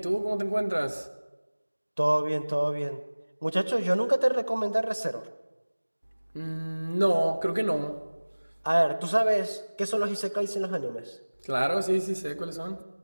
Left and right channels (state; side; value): inverted; both; correlation -1.00